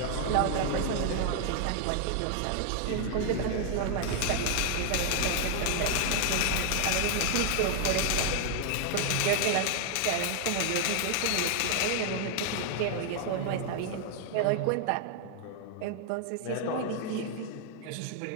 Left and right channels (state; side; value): different; both; correlation 0.00